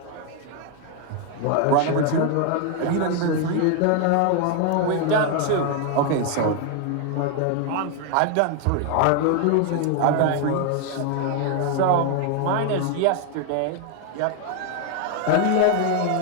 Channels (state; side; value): different; both; correlation 0.01